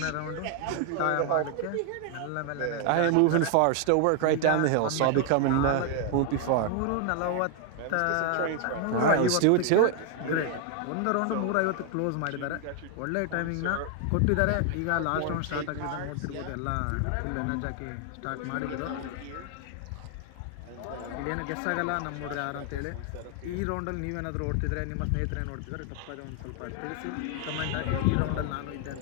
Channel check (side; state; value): both; different; correlation 0.00